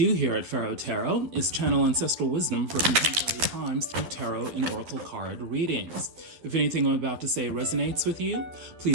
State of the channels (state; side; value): late; left; 11 ms